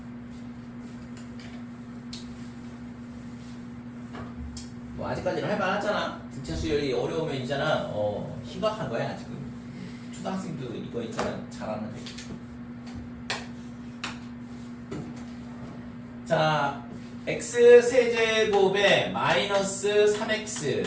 뭐 아직까지는 할만하잖아. 등차 수열이 어려우면 있잖아. 심각한 거야 지금. 초등학생도 이거 있잖아 잘하는데. 자, x 세제곱에 마이너스 3x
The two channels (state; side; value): identical; both; correlation 1.00